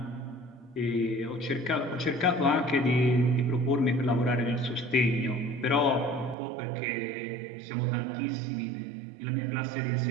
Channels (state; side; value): drops out; left; at 6.4 s